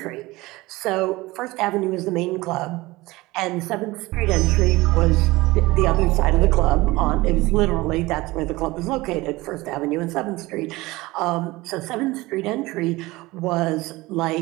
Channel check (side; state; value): left; quieter; 20.5 dB